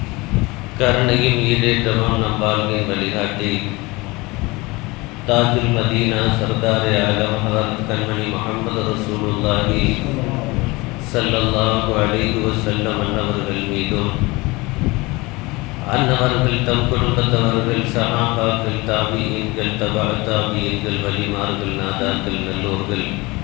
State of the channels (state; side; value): quieter; right; 23.4 dB